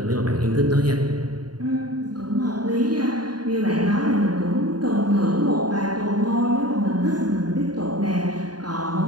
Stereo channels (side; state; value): left; late; 0.70 ms